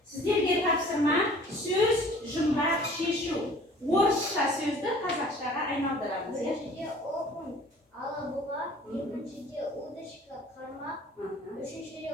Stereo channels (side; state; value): both; normal; correlation 0.50